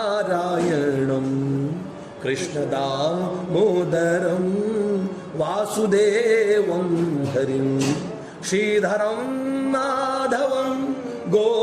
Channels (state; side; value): identical; both; correlation 1.00